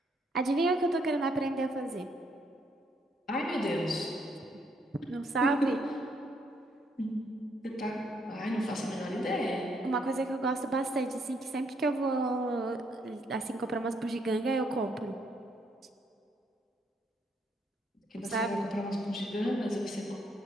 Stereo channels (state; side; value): normal; both; correlation 0.72